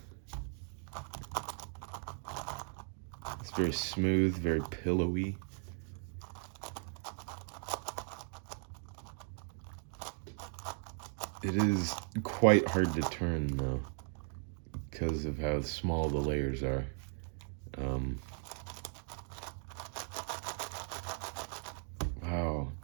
It's very smooth, very pillowy. It is quite hard to turn though, because of how small the layers are. Wow.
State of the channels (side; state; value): left; silent; 53 dB below the other